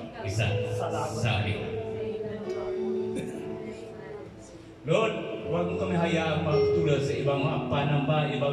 isa sa amin. Lord, huwag mo kami hayaan magtulad sa ibang mga panamba,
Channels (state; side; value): identical; both; correlation 1.00